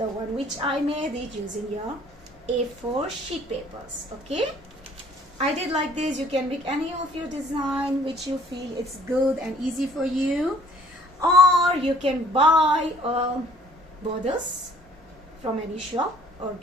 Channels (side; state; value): both; normal; correlation 0.57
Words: one which I made it using your A4 sheet papers. Okay, I did like this. You can make any of your design which you feel it's good and easy for you, or you can buy borders from any shop or